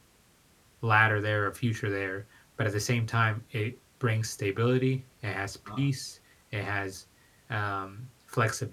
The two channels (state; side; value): identical; both; correlation 1.00